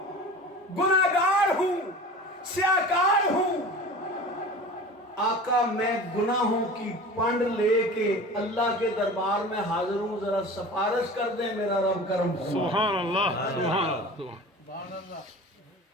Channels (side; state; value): both; normal; correlation 0.37